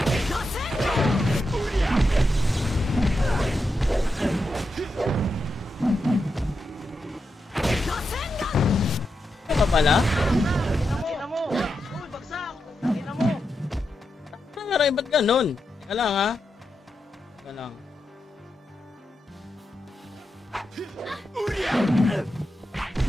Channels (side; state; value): both; normal; correlation 0.87